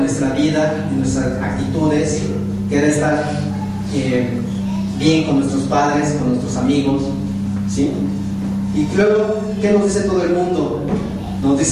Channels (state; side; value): identical; both; correlation 1.00